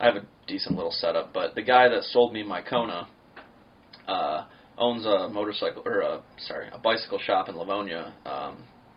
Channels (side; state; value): both; identical; correlation 1.00